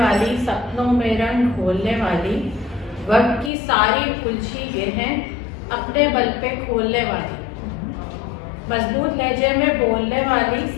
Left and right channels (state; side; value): drops out; right; at 3.5 s